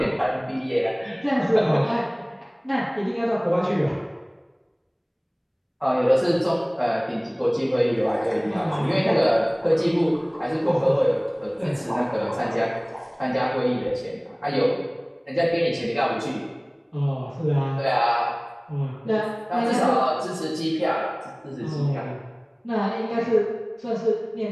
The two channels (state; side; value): identical; both; correlation 1.00